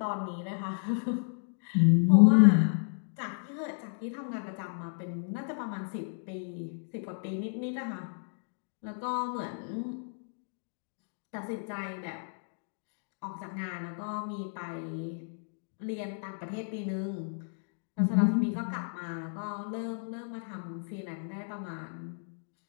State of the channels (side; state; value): right; silent; digital silence